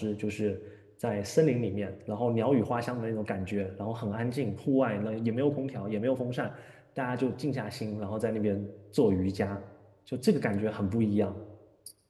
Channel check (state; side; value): identical; both; correlation 1.00